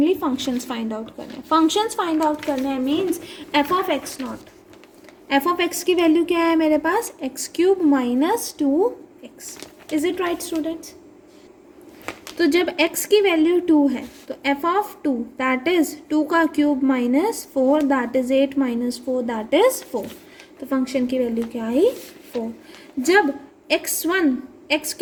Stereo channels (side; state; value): both; identical; correlation 1.00